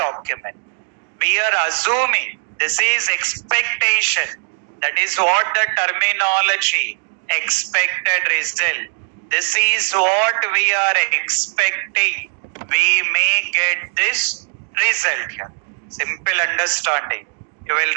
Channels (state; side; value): silent; left; 56 dB below the other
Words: We are assuming this is expectation. That is what the terminology expected result. This is what we are expecting. We may get this result here. Simple understanding. You will